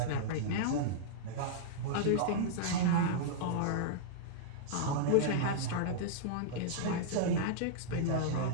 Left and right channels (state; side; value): different; both; correlation -0.02